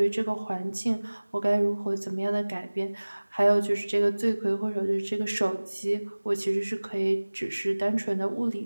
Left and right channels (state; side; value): inverted; both; correlation -1.00